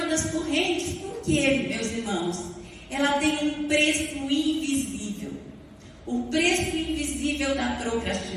das correntes. Por quê, meus irmãos? Ela tem um preço invisível. O preço invisível da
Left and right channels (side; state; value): both; identical; correlation 1.00